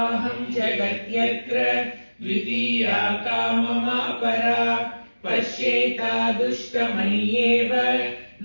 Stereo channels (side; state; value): both; inverted; correlation -1.00